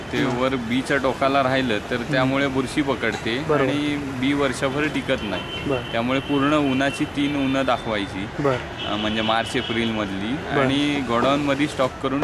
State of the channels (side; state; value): both; identical; correlation 1.00